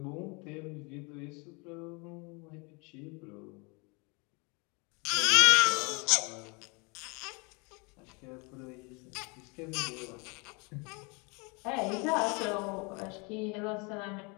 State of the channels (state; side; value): quieter; right; 30.6 dB